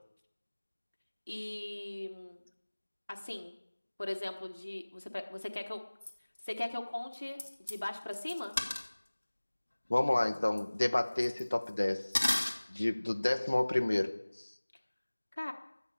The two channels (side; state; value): both; inverted; correlation -1.00